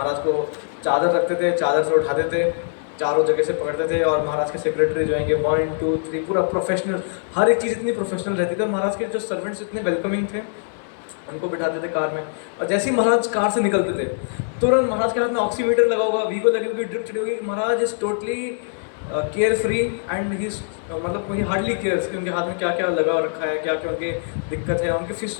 को चादर रखते थे, चादर से उठाते थे, चारों जगह से पकड़ते थे, और महाराज के सेक्रेटरी जो आएंगे 1, 2, 3 पूरा प्रोफेशनल, हर एक चीज़ इतनी प्रोफेशनल रहती थी। महाराज के जो सर्वेंट्स इतने वेलकमिंग थे, उनको बिठाते थे कार में, और जैसे ही महाराज कार से निकलते थे तुरंत महाराज के हाथ में ऑक्सीमीटर लगा होगा, वीगो लगी होगी, ड्रिप चढ़ी होगी। Maharaj is totally care free and he मतलब वही हार्डली केयर्स कि उनके हाथ में क्या क्या लगा रखा है, क्या क्या उनके दिक्कत है।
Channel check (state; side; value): silent; right; digital silence